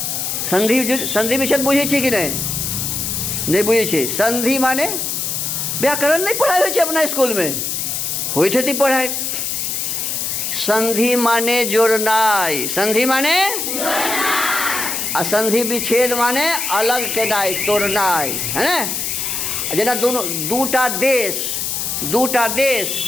संधि विच्छेद बुझे छी कि नहीं? नहीं बुझे छी। संधि माने व्याकरण नहीं पढ़ाई होय छे अपना स्कूल में? होय छे पढ़ाई। संधि माने जोड़नाई। संधि माने जोड़नाई। आ संधि विच्छेद माने अलग केनाई, तोड़नाई, है ना? जेना दोनों दूटा देश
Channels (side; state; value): left; noise; hiss, 2 dB below the sound